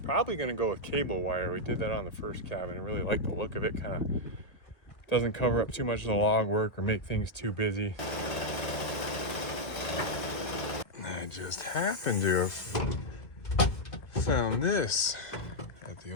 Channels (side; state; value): right; late; 1.5 ms